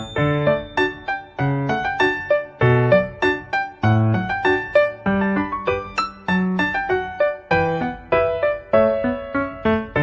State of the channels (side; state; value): both; identical; correlation 1.00